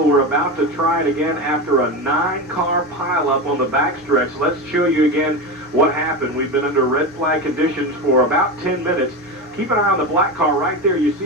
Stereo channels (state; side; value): normal; both; correlation 0.21